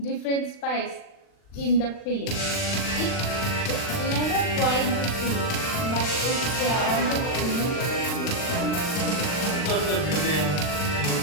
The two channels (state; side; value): late; right; 39 ms